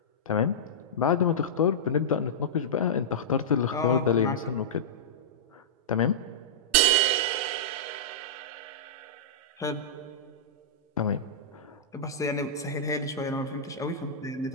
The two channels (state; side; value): normal; both; correlation -0.14